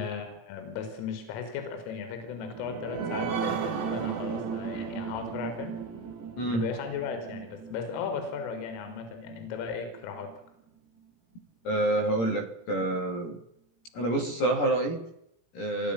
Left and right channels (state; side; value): late; right; 17 ms